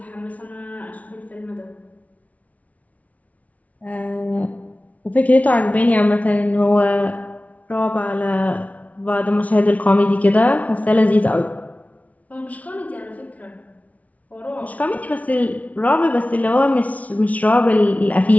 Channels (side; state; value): right; late; 0.069 ms